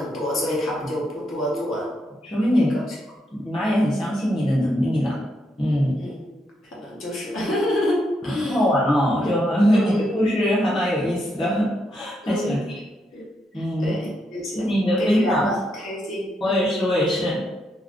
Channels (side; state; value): both; normal; correlation 0.80